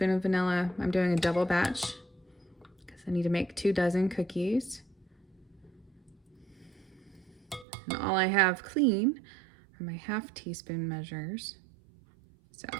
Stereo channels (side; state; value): left; drops out; at 7.7 s